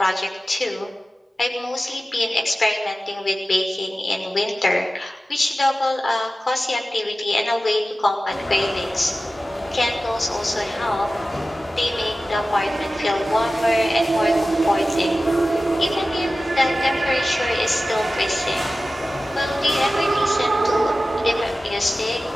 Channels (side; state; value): both; normal; correlation 0.95